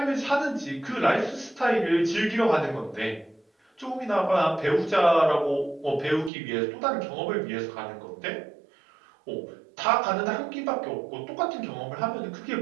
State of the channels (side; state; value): left; drops out; at 6.3 s